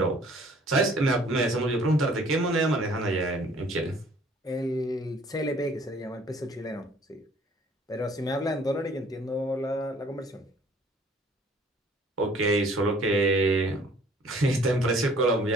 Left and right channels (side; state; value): both; normal; correlation 0.56